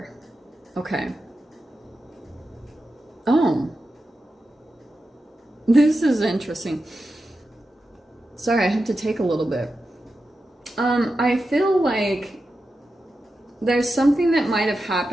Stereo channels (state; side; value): normal; both; correlation 0.90